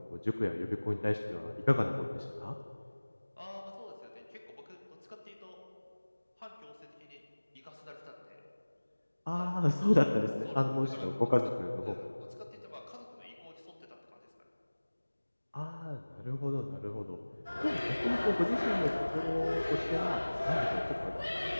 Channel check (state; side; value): inverted; both; correlation -1.00